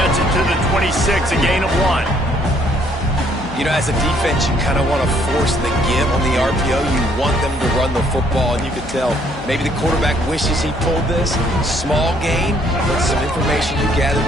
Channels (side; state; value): left; noise; hum, 18 dB below the sound